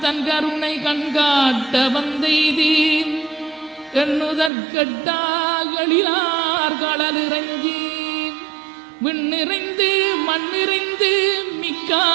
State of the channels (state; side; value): drops out; left; at 4.5 s